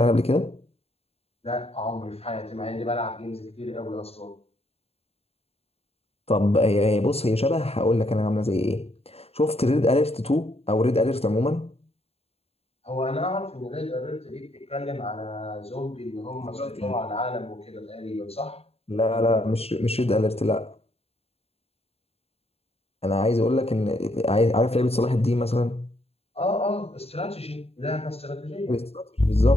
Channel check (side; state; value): right; late; 0.29 ms